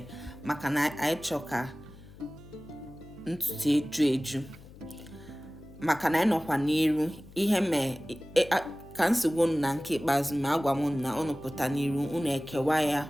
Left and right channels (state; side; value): noise; left; hum, 20 dB below the sound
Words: maka na anyị chọọ ka ntutu eju maka na anyị nọkwa n'iru ihe ka nsogbu na nke ikpeazụ ma agwa m na unu pụta n'iru unu ekewa ya